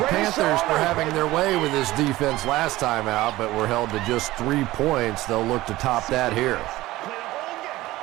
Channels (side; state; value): left; quieter; 17.4 dB